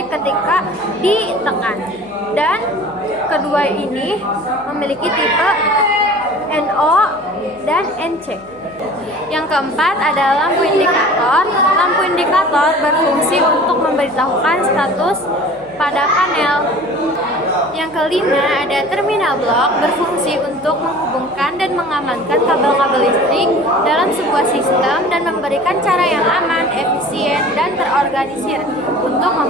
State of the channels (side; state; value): left; noise; hum, 28 dB below the sound